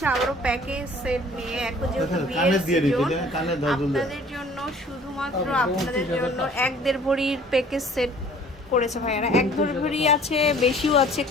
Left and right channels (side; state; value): both; normal; correlation 0.52